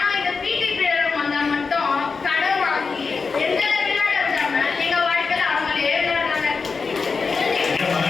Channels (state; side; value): quieter; right; 4.8 dB